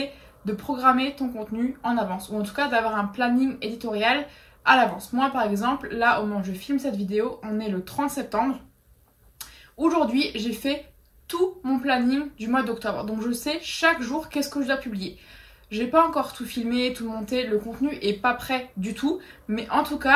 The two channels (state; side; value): identical; both; correlation 1.00